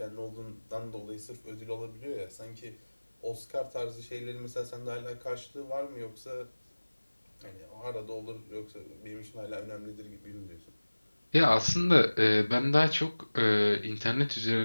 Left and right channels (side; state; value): both; inverted; correlation -1.00